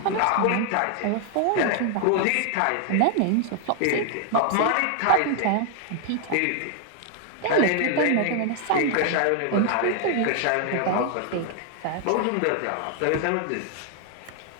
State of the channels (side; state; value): both; different; correlation 0.00